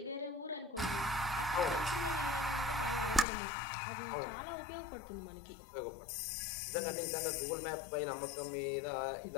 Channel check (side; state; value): right; drops out; at 3.2 s